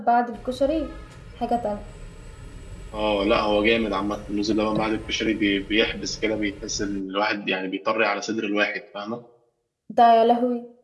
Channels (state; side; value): identical; both; correlation 1.00